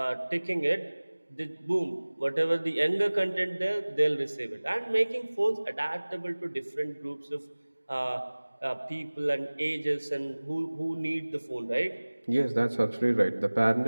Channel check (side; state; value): both; inverted; correlation -1.00